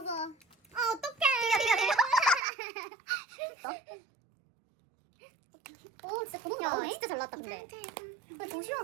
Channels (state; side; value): drops out; left; at 2.4 s